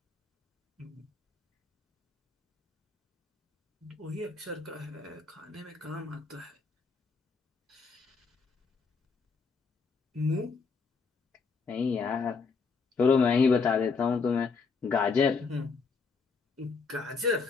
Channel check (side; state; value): right; quieter; 4.9 dB